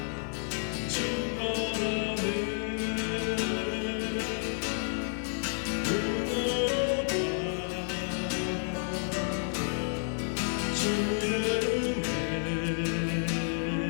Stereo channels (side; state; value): right; silent; digital silence